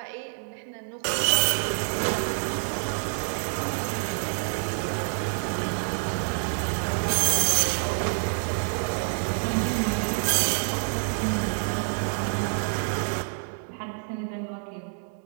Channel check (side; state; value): left; silent; 59 dB below the other